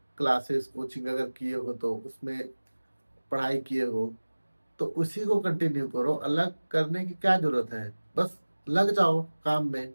क्लासेस कोचिंग अगर किए हो तो उसमें पढ़ाई किए हो, तो उसी को कंटिन्यू करो। अलग करने की क्या जरूरत है? बस लग जाओ काम में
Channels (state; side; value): inverted; both; correlation -1.00